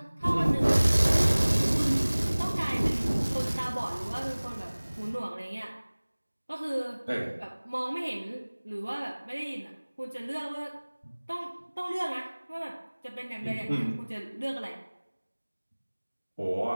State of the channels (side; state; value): both; inverted; correlation -1.00